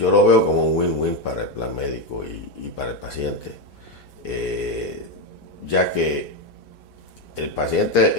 lo veo como un win-win para el plan médico y para el paciente, ya que el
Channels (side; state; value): right; late; 4.4 ms